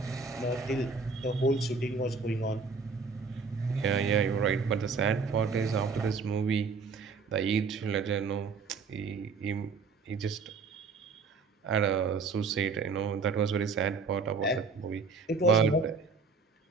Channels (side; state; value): left; quieter; 4.7 dB